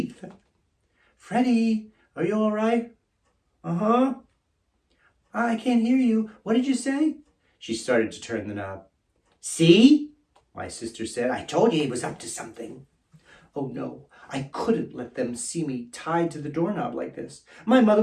Freddy, are you all right? Uh-huh. I can't hear you. What did you say? She started to turn the knob. See? My sister said. I told you he was up to something. Oh no, I couldn't let them see me tied to the doorknob like this. My mother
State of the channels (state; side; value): identical; both; correlation 1.00